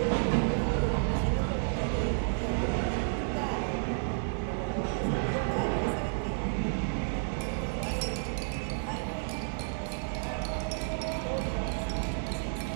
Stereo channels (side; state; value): left; silent; 57 dB below the other